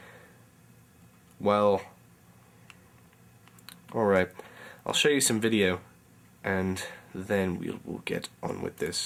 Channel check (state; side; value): identical; both; correlation 1.00